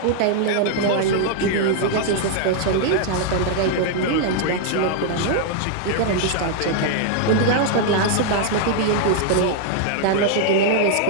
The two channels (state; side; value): different; both; correlation 0.00